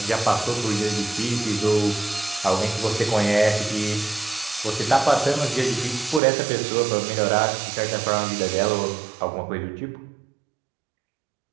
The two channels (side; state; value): left; drops out; at 6.2 s